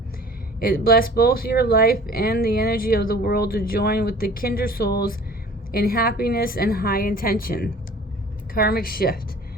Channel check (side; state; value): both; normal; correlation 0.46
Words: It bless both your life and the energy of the world to join with the kindred souls in happiness and high intention. Karmic shift.